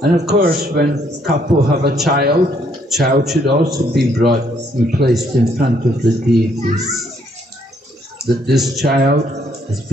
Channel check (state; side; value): normal; both; correlation 0.69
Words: And of course, when couple have a child should also be brought and placed in front of the deities. That this child has